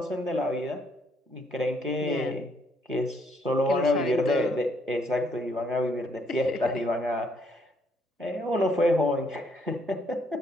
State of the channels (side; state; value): both; normal; correlation 0.70